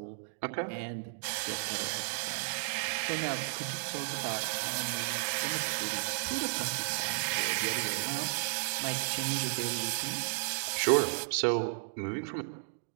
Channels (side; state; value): left; silent; digital silence